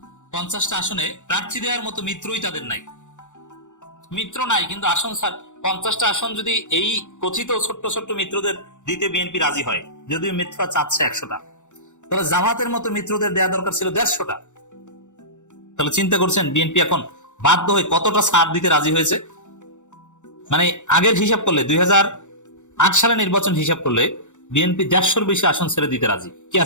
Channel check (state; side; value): late; right; 0.85 ms